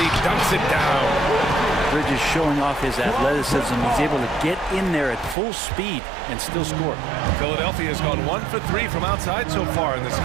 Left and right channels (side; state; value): left; drops out; at 5.4 s